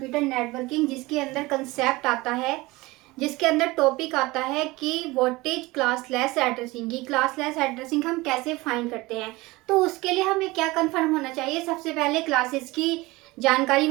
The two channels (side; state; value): left; quieter; 21.4 dB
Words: नेटवर्किंग, जिसके अंदर कंसेप्ट आता है, जिसके अंदर टॉपिक आता है कि व्हाट इज क्लासलेस एड्रेसिंग। की क्लासलेस एड्रेसिंग हम कैसे फाइंड करते हैं। तो उसके लिए हमें क्या कंफर्म होना चाहिए। सबसे पहले क्लासेस की जानकारी